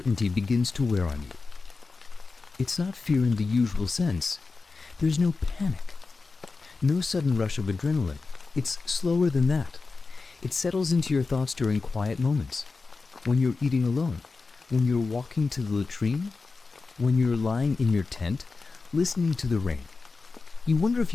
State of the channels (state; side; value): quieter; right; 4.1 dB